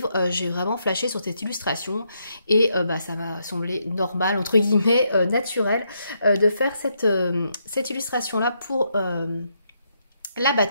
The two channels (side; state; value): both; inverted; correlation -0.78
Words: j'ai vraiment flashé sur cette illustration et ça m'a semblé normal, entre guillemets, naturel de faire cette illustration-là pour la